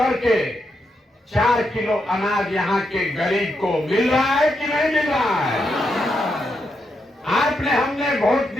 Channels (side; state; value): both; normal; correlation 0.82